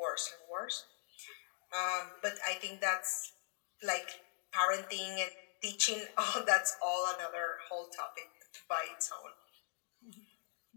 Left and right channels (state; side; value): silent; right; digital silence